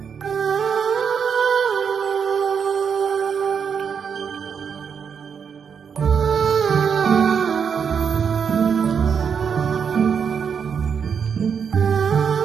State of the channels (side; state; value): left; quieter; 6.8 dB